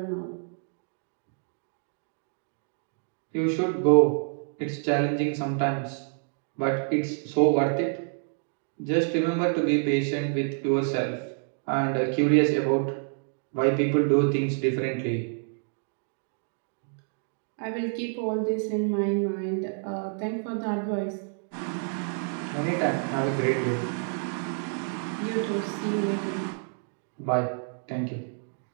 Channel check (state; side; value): silent; left; 59 dB below the other